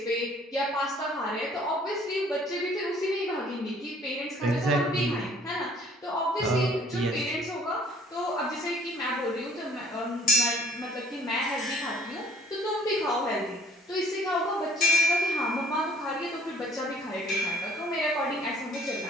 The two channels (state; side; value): normal; both; correlation 0.56